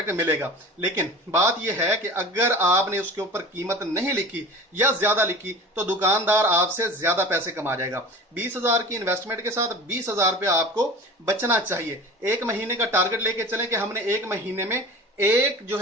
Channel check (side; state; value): both; normal; correlation 0.36